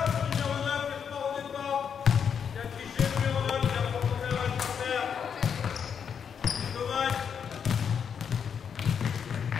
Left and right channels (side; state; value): right; quieter; 7.3 dB